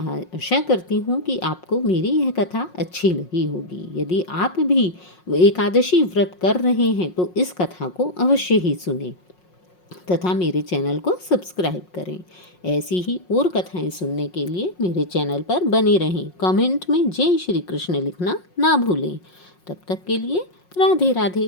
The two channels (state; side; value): late; right; 5.5 ms